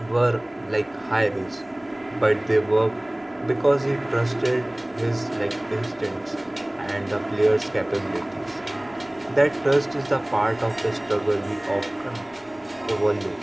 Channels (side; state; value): left; noise; rumble, 30 dB below the sound